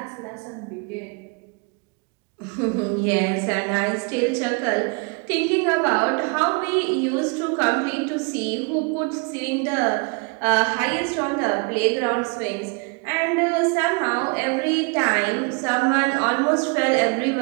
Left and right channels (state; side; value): quieter; left; 32.5 dB